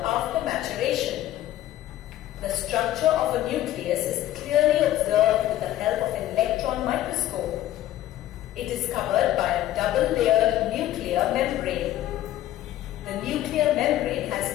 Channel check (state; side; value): quieter; right; 13.7 dB